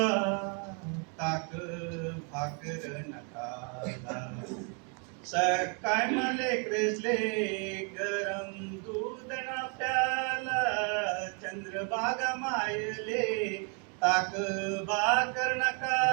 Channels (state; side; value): quieter; left; 37.6 dB